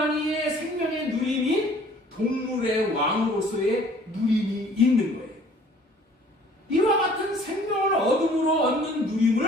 생명의 누림인 동물의 왕으로서의 누림이 있는 거예요. 이와 같은 생명을 얻음으로 얻는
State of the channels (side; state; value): both; normal; correlation 0.54